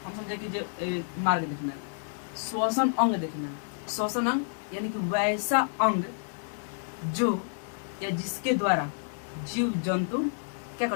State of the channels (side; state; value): right; silent; digital silence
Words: हम समझे कि मार्ग देखना है, श्वसन अंग देखना है। श्वसन अंग यानी कि वैसा अंग जो या जिसके द्वारा जीव जंतु क्या